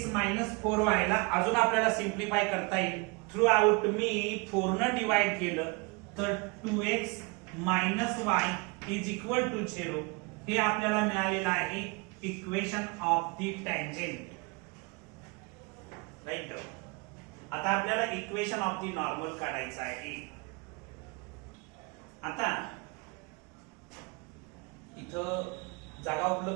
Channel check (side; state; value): left; quieter; 28.9 dB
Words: minus 4y ला अजून आपल्याला सिम्प्लिफाय करता येईल. थ्रू आउट मी 4 न डिवाइड केलं तर 2x minus y is equal to 0. हे आपल्याला मिळालेलं आहे equation of the tangent. Right. आता आपल्याला इक्वेशन ऑफ द नॉर्मल काढायचं आहे. आता इथं जागा